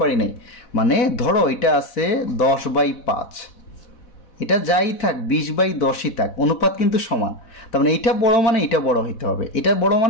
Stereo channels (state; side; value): late; right; 4.1 ms